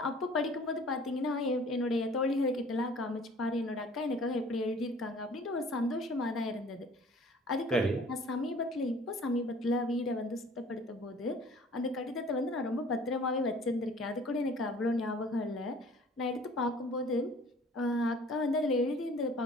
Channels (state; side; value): normal; both; correlation 0.51